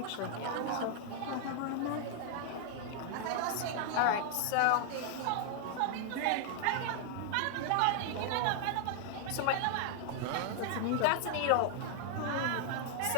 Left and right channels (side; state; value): both; different; correlation 0.00